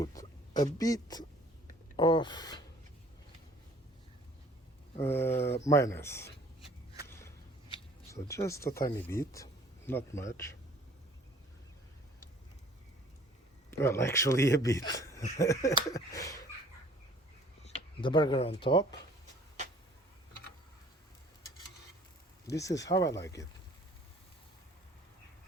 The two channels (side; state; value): both; normal; correlation 0.53